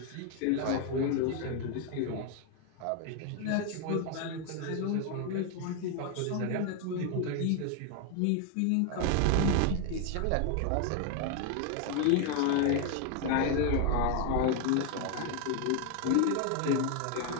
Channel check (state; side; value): different; both; correlation 0.01